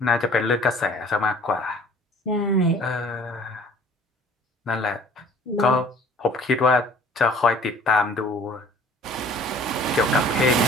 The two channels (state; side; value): normal; both; correlation 0.52